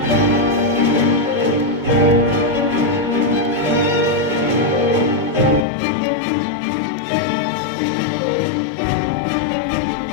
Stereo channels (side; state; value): right; drops out; at 5.7 s